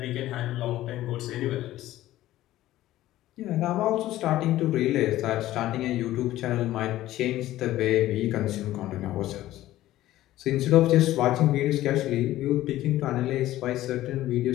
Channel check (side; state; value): right; quieter; 14.9 dB